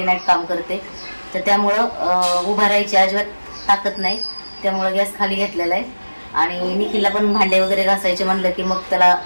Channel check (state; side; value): inverted; both; correlation -1.00